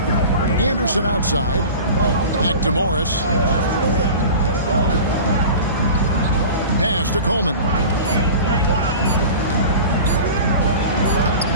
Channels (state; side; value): inverted; both; correlation -0.36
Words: Anderson outside. Back to Morris. Pass to Coleman.